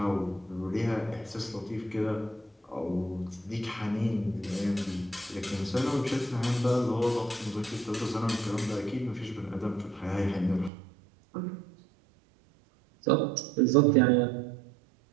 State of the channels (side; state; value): left; drops out; at 10.7 s